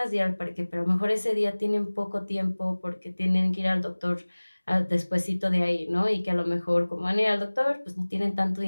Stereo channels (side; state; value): both; inverted; correlation -1.00